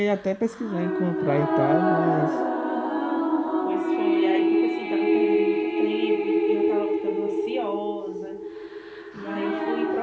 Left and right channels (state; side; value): identical; both; correlation 1.00